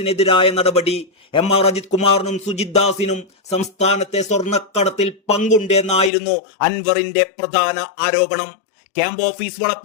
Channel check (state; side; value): drops out; right; at 6.1 s